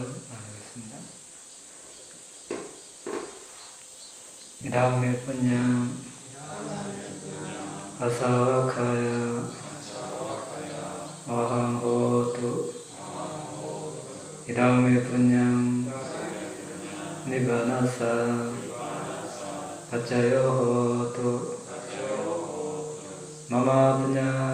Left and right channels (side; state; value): both; identical; correlation 1.00